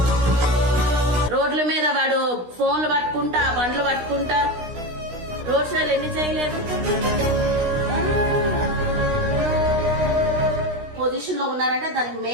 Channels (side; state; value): left; late; 16 ms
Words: రోడ్ల మీద వాడు ఫోన్లు పట్టుకుంటా, బండ్లు పట్టుకుంటా రోడ్ షోలు ఎన్ని చేయలేదు? పొజిషన్ లో ఉన్నారంటే దానికి